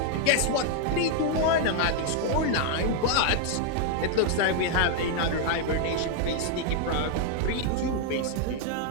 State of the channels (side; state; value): both; different; correlation 0.00